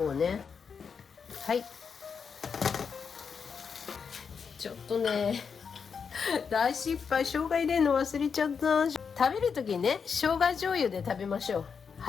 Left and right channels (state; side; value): quieter; right; 6.2 dB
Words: うね。はい。ちょっとね、大失敗。生姜入れるの忘れちゃった。食べるときにね、生姜醤油で食べましょう。